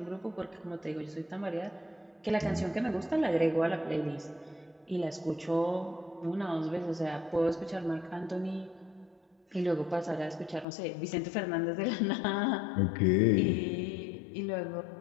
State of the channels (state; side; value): drops out; right; at 10.7 s